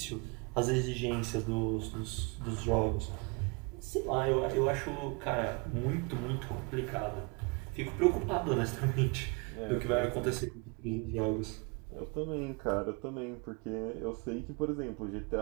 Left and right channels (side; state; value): left; quieter; 29.8 dB